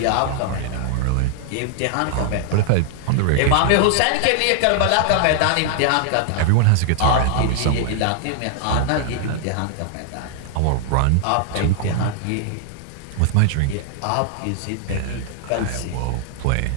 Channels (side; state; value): both; different; correlation -0.01